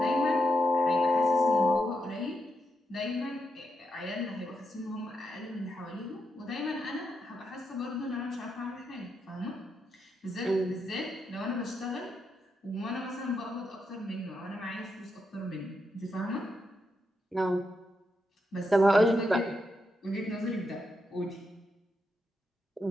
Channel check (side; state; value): both; normal; correlation 0.83